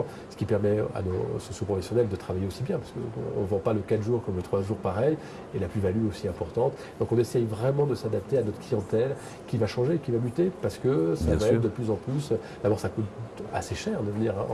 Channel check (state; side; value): identical; both; correlation 1.00